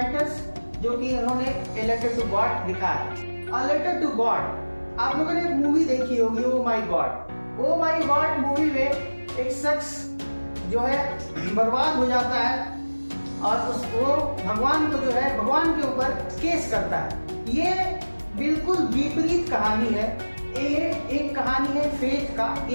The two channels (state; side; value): inverted; both; correlation -1.00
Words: जो कि इन्होंने ए लेटर टू गॉड लिखा है। अ लेटर टू गॉड, आप लोगों ने एक मूवी देखी होगी, oh my God. Oh my God movie में एक शख्स जो है बर्बाद हो जाता है और वो भगवान को जो है भगवान के ऊपर केस करता है। ये बिल्कुल विपरीत कहानी है। ये एक कहानी है फेथ का,